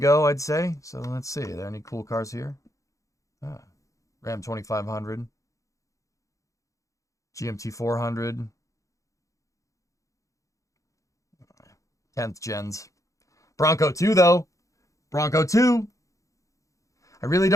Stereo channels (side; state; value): right; late; 0.16 ms